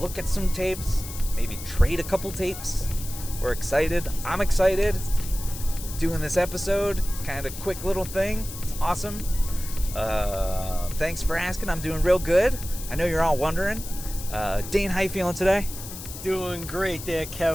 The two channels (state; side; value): noise; left; hiss, 11 dB below the sound